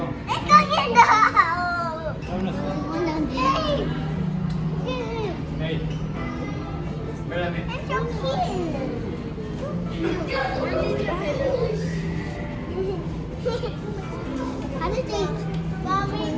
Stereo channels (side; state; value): both; identical; correlation 1.00